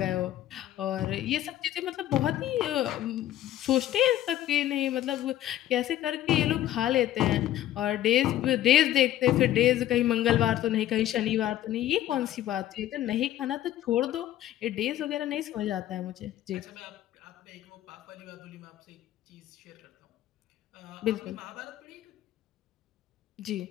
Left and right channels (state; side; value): quieter; right; 13.0 dB